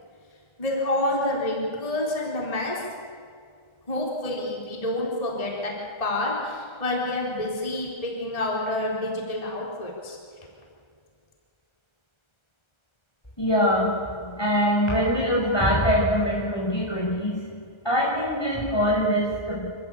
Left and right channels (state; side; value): late; right; 1.3 ms